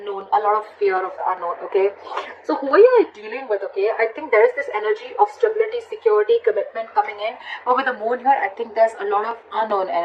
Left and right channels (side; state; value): both; identical; correlation 1.00